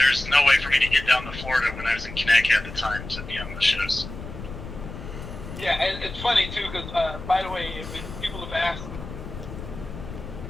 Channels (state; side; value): noise; left; rumble, 11 dB below the sound